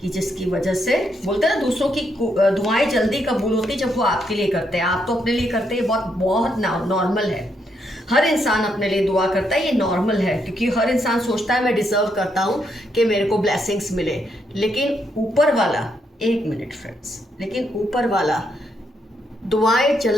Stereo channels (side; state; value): both; normal; correlation 0.77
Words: कि जिसकी वजह से बोलते हैं ना, दूसरों की दुआएं जल्दी कबूल होती जब वो आपके लिए करते हैं। आप तो अपने लिए करते हैं, बहुत बहुत नॉर्मल है। हर इंसान अपने लिए दुआ करता है, ये नॉर्मल है, क्योंकि हर इंसान सोचता है मैं डिजर्व करता हूँ कि मेरे को ब्लेसिंग्स मिले। लेकिन ऊपर वाला, एक मिनट फ्रेंड्स, लेकिन ऊपर वाला दुआएं